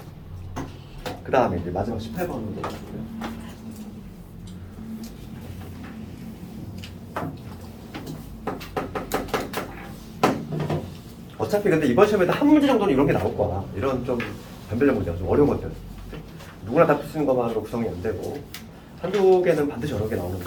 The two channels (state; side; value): identical; both; correlation 1.00